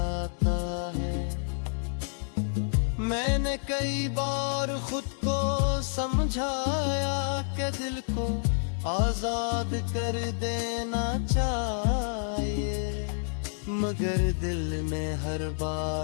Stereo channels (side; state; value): right; silent; digital silence